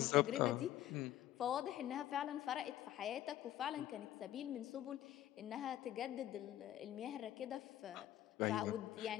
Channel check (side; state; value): right; quieter; 13.1 dB